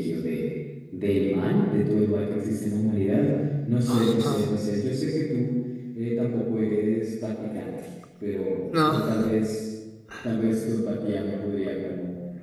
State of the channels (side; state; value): both; identical; correlation 1.00